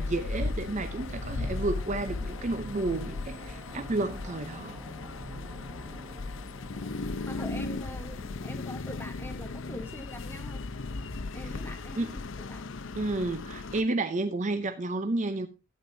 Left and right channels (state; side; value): normal; both; correlation 0.61